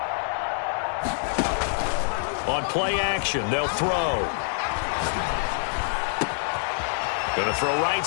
On play action, they'll throw. Gonna throw right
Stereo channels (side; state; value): right; silent; digital silence